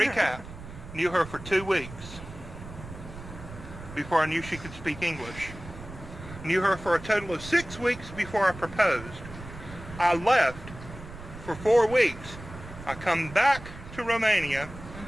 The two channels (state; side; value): noise; right; rumble, 14 dB below the sound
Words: knew her for 2 weeks before I knew she could speak English. Knew her for a total of 6 weeks before I proposed. I left for 4 weeks. I come back to Romania,